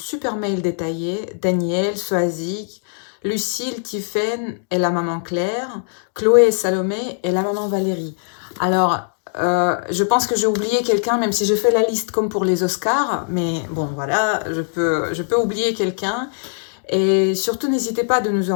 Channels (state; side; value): silent; right; digital silence